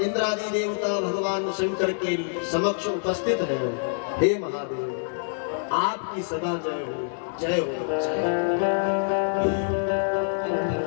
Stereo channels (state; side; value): silent; right; digital silence